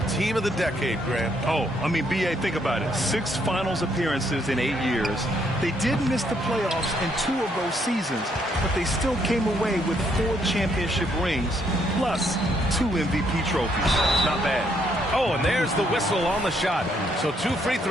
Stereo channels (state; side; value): normal; both; correlation 0.71